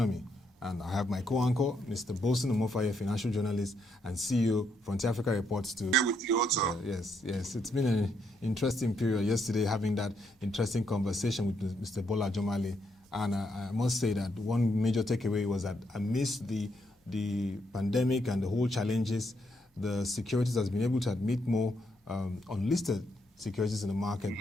And I have my co-anchor, Mr. Bolson Omofaye, financial journalist and CEO, Frontier Africa Reports. To with you also. Yes. It's been an interesting period yesterday, having that interesting conversation with Mr. Bola Jomale. And I must say that one major takeaway was that amidst the pandemic and the whole challenges, the securities has been able to admit more unlisted securities in the market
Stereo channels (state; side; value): normal; both; correlation 0.77